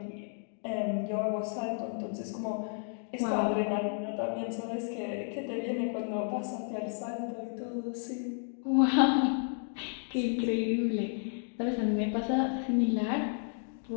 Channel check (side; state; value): right; silent; 56 dB below the other